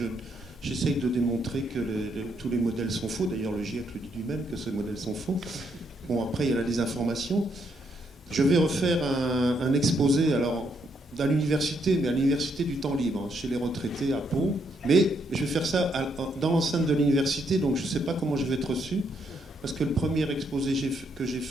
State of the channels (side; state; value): both; normal; correlation 0.75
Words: j'essaye de démontrer que tous les modèles sont faux. D'ailleurs, le GIEC le dit lui-même que ces modèles sont faux. Bon, après, il y a la désinformation. Je vais refaire un exposé, alors, à l'université, mais à l'université du temps libre, chez les retraités à Pau. Mais je vais faire ça dans l'enceinte de l'université, donc je ne sais pas comment je vais être reçu. Parce que le premier exposé que j'ai